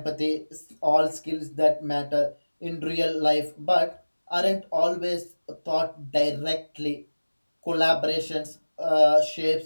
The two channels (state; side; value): inverted; both; correlation -1.00